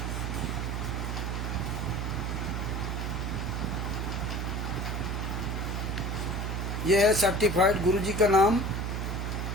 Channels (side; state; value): right; noise; hum, 2 dB below the sound